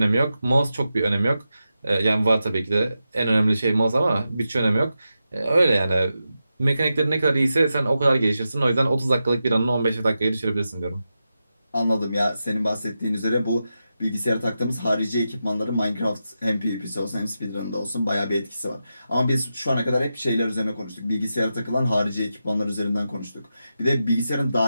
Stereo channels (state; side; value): inverted; both; correlation -0.90